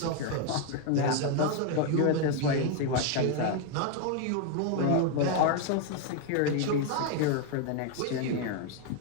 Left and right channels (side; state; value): both; different; correlation 0.01